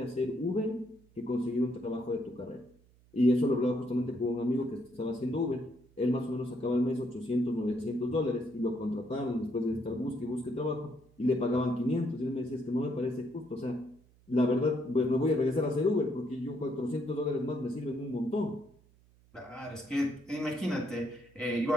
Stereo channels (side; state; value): right; noise; hum, 29 dB below the sound